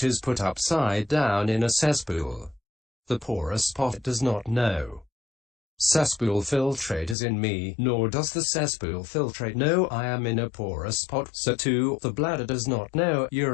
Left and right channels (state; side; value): drops out; right; at 7.2 s